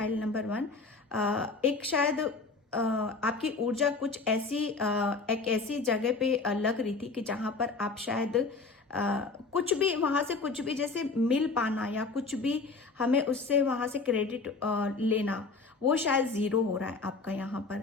नंबर 1, एक शायद आपकी ऊर्जा कुछ ऐसी एक ऐसी जगह पे लग रही थी कि जहां पर आप शायद कुछ भी वहां से कुछ भी जैसे मिल पाना या कुछ भी हमें उससे वहां से क्रेडिट लेना, वो शायद 0 हो रहा है आपका यहाँ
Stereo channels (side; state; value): right; quieter; 4.1 dB